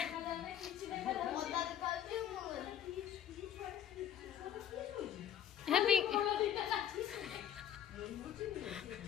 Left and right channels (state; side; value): quieter; right; 10.1 dB